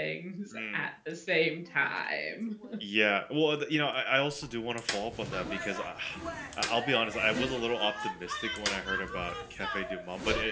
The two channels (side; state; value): both; identical; correlation 1.00